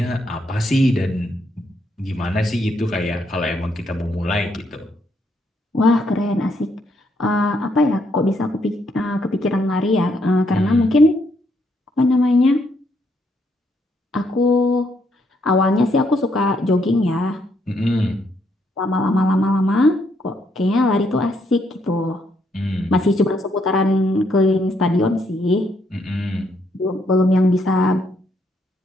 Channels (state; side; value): normal; both; correlation 0.74